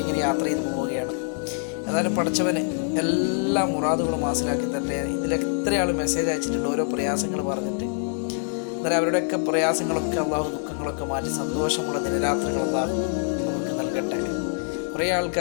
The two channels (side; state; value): right; silent; 62 dB below the other